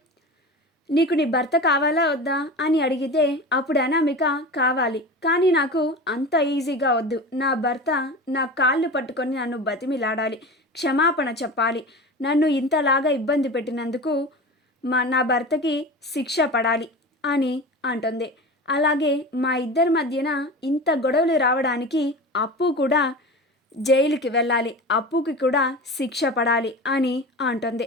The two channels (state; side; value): normal; both; correlation 0.31